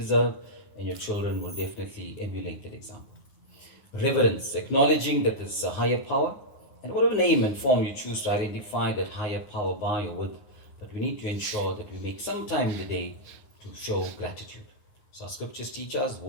and your children will definitely emulate that example. Reverence, acknowledging that there's a higher power, and whatever name and form you choose to identify that higher power by or with, but we need to ensure that we make some time in the day to show gratitude. So our scriptures teach us,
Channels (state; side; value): late; right; 9.4 ms